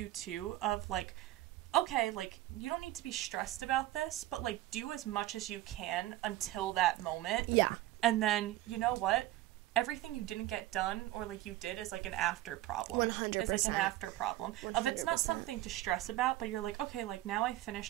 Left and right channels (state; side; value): quieter; left; 15.7 dB